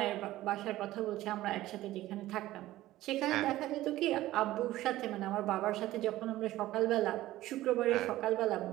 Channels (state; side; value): quieter; left; 15.7 dB